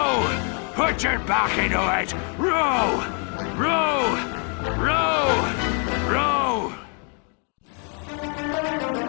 Put your back into it! Row! Row!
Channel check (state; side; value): quieter; right; 39.6 dB